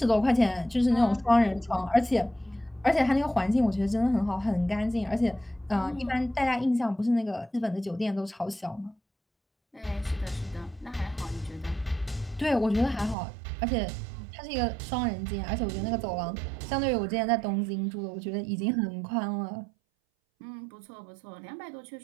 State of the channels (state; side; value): drops out; left; at 13.2 s